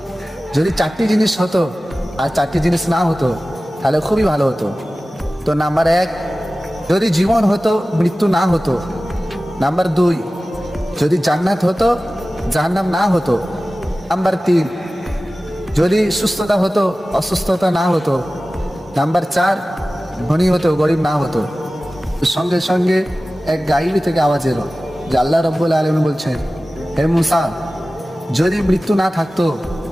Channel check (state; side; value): normal; both; correlation 0.96